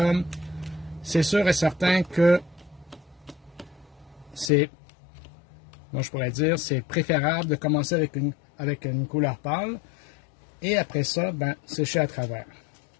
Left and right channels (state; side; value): drops out; right; at 4.5 s